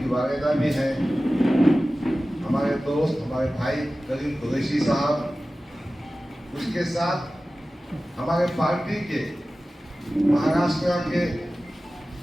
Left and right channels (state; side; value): normal; both; correlation 0.96